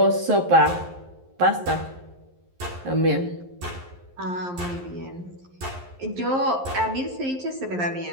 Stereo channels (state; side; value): late; left; 11 ms